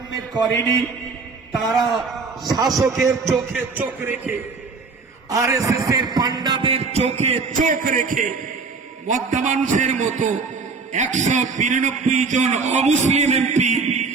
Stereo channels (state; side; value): quieter; left; 4.5 dB